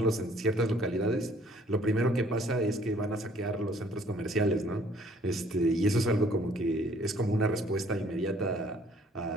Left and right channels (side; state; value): both; normal; correlation 0.60